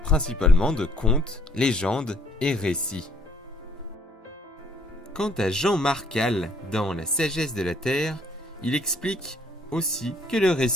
principalement de contes, légendes et récits. Quant à Jean Marcal, dans La sagesse de la Terre, il explique aussi que le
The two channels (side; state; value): both; normal; correlation 0.61